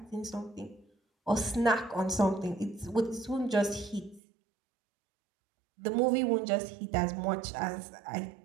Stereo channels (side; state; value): left; drops out; at 4.2 s